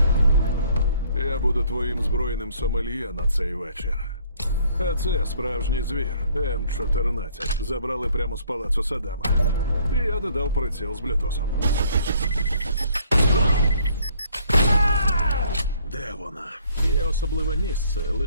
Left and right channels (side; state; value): both; inverted; correlation -0.62